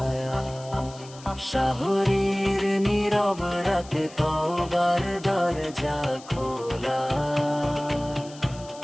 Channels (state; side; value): noise; left; hiss, 20 dB below the sound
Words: শাহরির নীরব রাতে তওবার দরজা খোলা,